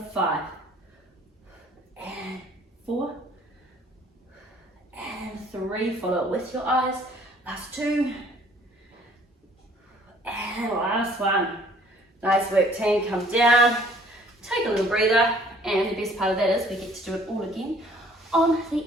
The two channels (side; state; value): both; normal; correlation 0.57